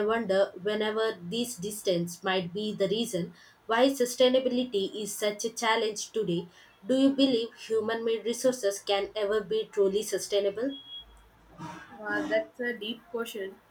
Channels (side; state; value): both; identical; correlation 1.00